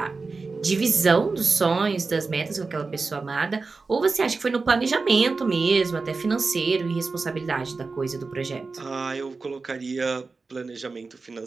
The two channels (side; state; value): left; quieter; 4.1 dB